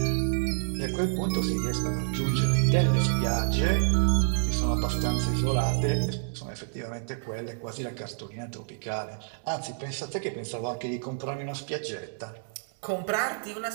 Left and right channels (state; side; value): silent; left; digital silence